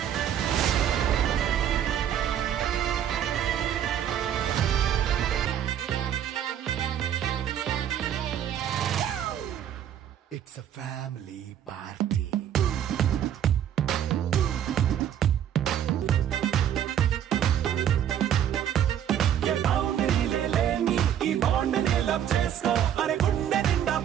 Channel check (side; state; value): left; quieter; 9.9 dB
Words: It's a family party. ये बाउंड्री ले लेनी ఈ బాండ్ ని లవ్ చేసుకో. అరే గుండె నిండా